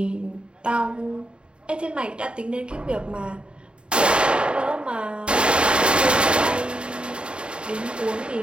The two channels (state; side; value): late; left; 0.052 ms